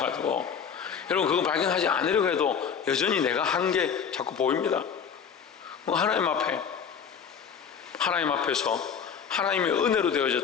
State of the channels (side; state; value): right; quieter; 7.1 dB